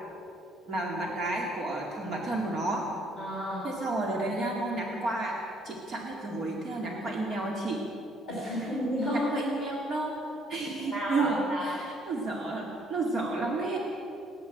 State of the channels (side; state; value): both; normal; correlation 0.64